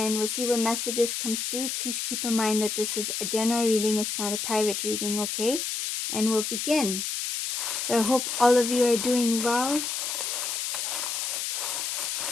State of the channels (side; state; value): left; noise; hiss, 2 dB below the sound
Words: we'll see what messages comes through. Please keep in mind that this is a general reading, it's not a private reading, okay? And we'll begin. So I hope all of you are doing well.